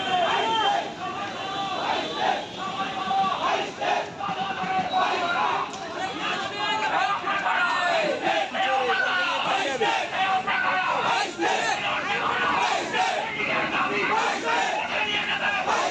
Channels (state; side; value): identical; both; correlation 1.00